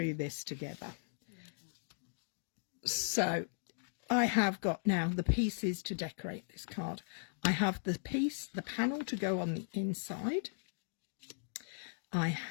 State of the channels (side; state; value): right; silent; digital silence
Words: this together. So I have got now the pieces to decorate this card. I have the panel to go on the inside. I